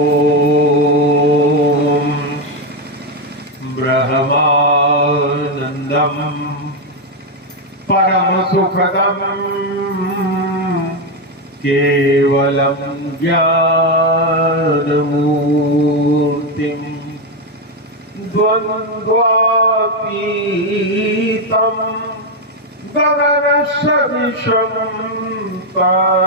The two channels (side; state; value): both; normal; correlation 0.06